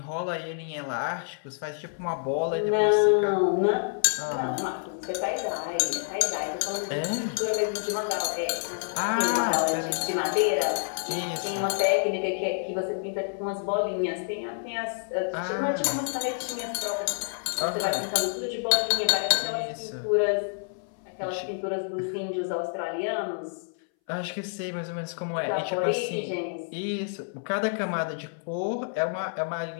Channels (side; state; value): right; silent; 59 dB below the other